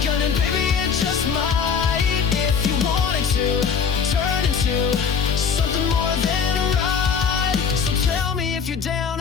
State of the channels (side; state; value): right; quieter; 6.3 dB